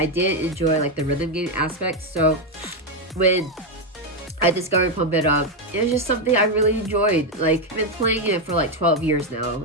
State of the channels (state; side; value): normal; both; correlation 0.05